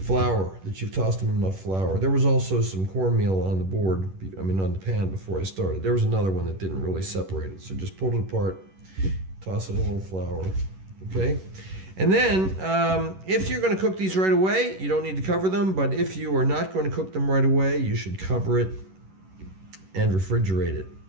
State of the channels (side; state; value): left; late; 11 ms